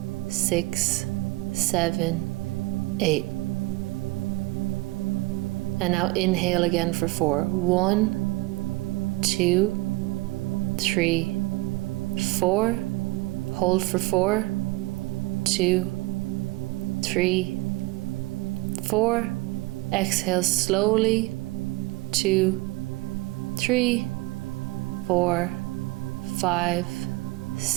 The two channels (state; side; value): quieter; left; 22.7 dB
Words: 6, 7, 8. And now inhale again for 4. 1, 2, 3, 4. Hold for 4, 2, 3, 4. Exhale slowly. 2, 3, 4, 5,